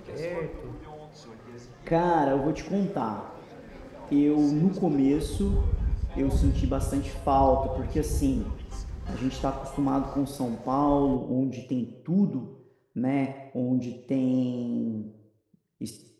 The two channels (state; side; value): identical; both; correlation 1.00